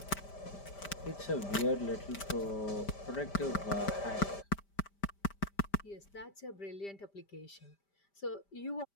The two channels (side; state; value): right; late; 5.1 ms